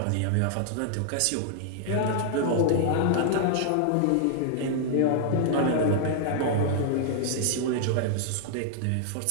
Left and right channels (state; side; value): different; both; correlation -0.01